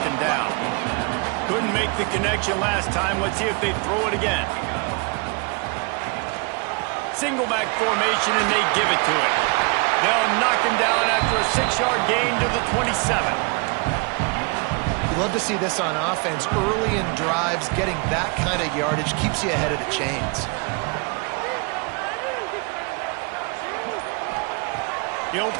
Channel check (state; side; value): quieter; left; 32.0 dB